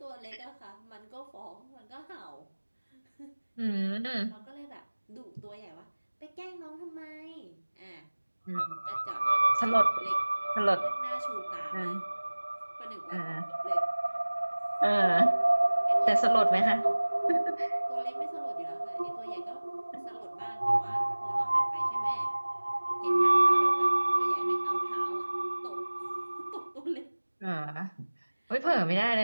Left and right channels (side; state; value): both; inverted; correlation -1.00